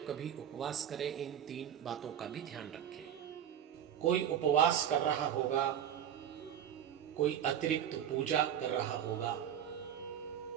कभी उपवास करें इन 3 बातों का भी ध्यान रखें। कोई उपवास कर रहा होगा, कोई अतिरिक्त पूजा कर रहा होगा,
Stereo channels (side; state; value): left; quieter; 9.7 dB